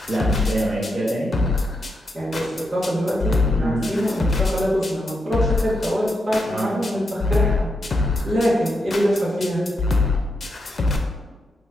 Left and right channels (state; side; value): normal; both; correlation 0.83